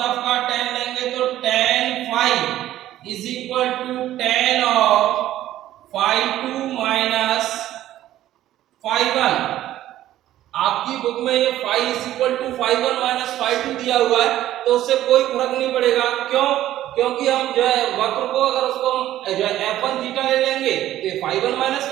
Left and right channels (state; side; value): quieter; left; 13.4 dB